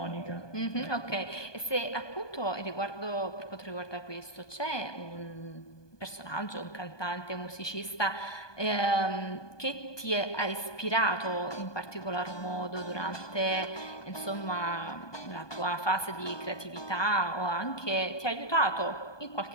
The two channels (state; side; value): late; right; 1.2 ms